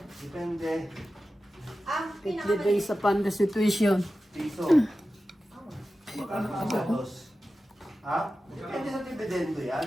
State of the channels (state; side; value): normal; both; correlation 0.94